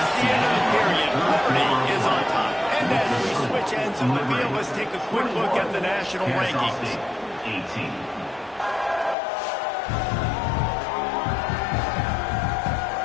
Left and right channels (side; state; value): right; drops out; at 9.2 s